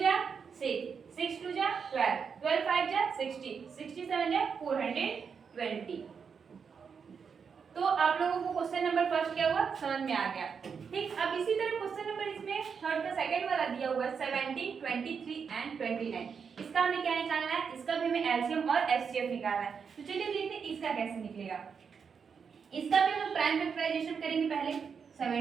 जा 6, 6 2 जा 12, 12 5 जा 60, 67 जा 420। तो आप लोगों को क्वेश्चन नंबर फर्स्ट क्या हुआ, समझ में आ गया। ठीक, अब इसी तरह क्वेश्चन नंबर इसमें थर्ड का सेकंड वाला दिया हुआ है 17, 23 एंड 29। इसका हमें क्या निकालना है, इसका भी हमें एलसीएम और एचसीएफ निकालना है। तो चलिए देखते हैं इसका कैसे निकलेगा। इसका भी हम प्राइम फैक्टराइजेशन करेंगे। पहले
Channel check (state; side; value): quieter; left; 6.2 dB